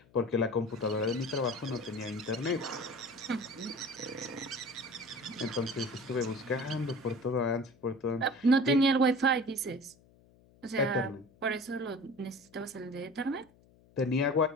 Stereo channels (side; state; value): left; noise; hum, 28 dB below the sound